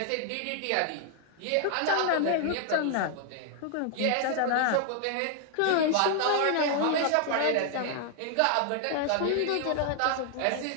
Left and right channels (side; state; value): both; different; correlation 0.00